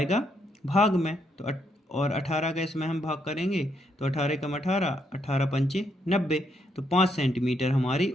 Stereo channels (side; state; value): both; normal; correlation 0.76